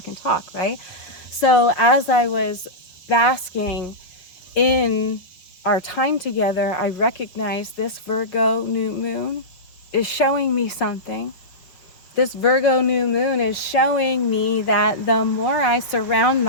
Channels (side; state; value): right; late; 5.9 ms